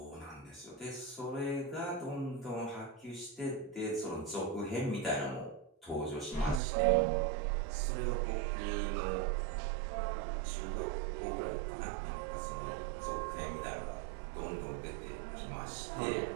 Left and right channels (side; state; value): left; drops out; at 6.6 s